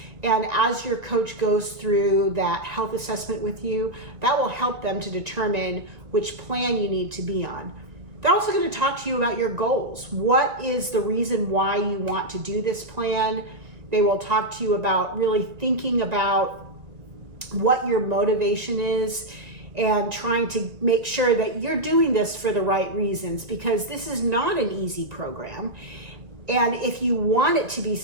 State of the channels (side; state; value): left; late; 1.9 ms